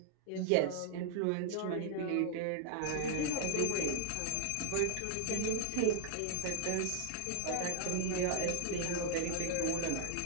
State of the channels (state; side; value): different; both; correlation 0.00